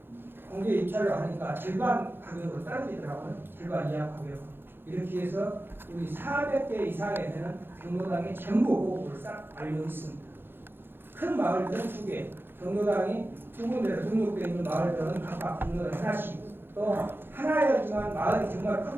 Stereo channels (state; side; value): late; left; 0.10 ms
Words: 공개 입찰을 하니까 절반 가격으로 떨어지더라고요. 절반 이하 가격. 이렇게 해서 우리 400개 이상에 되는 경로당에 전부 보고를 싹 알려 있습니다. 큰 마을들은 2개, 경로당이 2군데로 등록되어 있는 마을들은 각각 경로당 하나씩, 또 하나였지만 마을이 정말